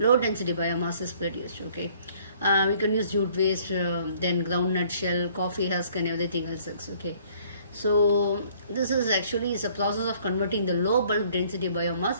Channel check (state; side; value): inverted; both; correlation -0.59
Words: density biomass is produced. Okay, we can use jute waste, then groundnut shell, coffee husk and everything else. Okay, so this is actually is a process of converting the low bulk density biomass